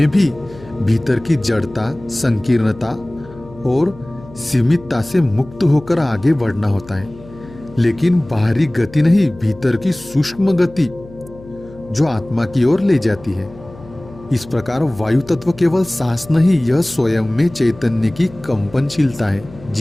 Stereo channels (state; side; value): noise; left; hum, 20 dB below the sound